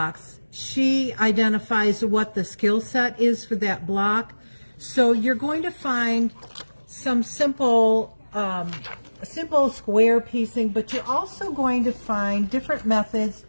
she identifies what the skill set is for that block. So you're going to find some simple square piecing, but you're also going to find different methods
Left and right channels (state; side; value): inverted; both; correlation -1.00